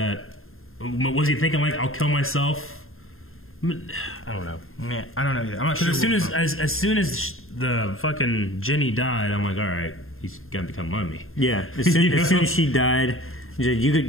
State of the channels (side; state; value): right; late; 0.61 ms